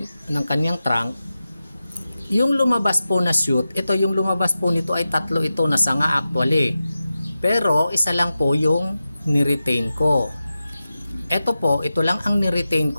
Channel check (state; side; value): inverted; both; correlation -0.93